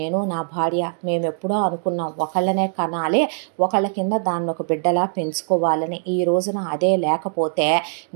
నా భార్య. మేమెప్పుడో అనుకున్నాం ఒకళ్ళనే కనాలి, ఒకళ్ళ కింద దాన్ని ఒక బిడ్డలా పెంచుకోవాలని. ఈ రోజున అదే లేకపోతే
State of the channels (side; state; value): left; silent; 55 dB below the other